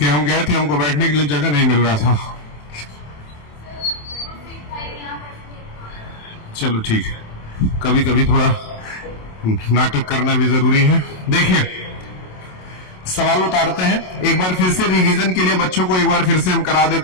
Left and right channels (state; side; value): late; right; 27 ms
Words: हम गए थे, हमको बैठने के लिए जगह नहीं मिल रहा था। चलो ठीक है, कभी कभी थोड़ा नाटक करना भी जरूरी है। देखिए सवाल उतारते हैं, एक बार फिर से रिवीजन के लिए बच्चों को एक बार फिर से हम करा